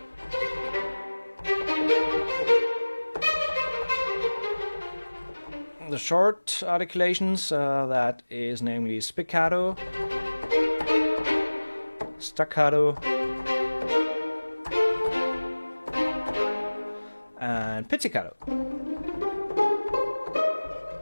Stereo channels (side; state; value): both; inverted; correlation -1.00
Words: the short articulations, that is namely spiccato, staccato, and pizzicato.